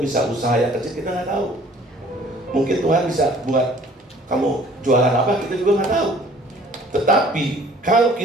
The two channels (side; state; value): both; normal; correlation 0.53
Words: usaha yang kecil, kita nggak tahu. Mungkin Tuhan bisa buat kamu jualan apa, kita juga nggak tahu. Tetapi kalau